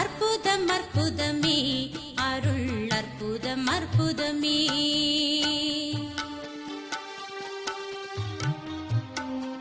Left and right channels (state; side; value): identical; both; correlation 1.00